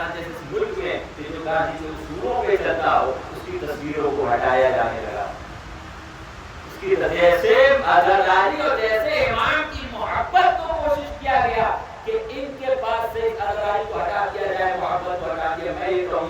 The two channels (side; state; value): both; identical; correlation 1.00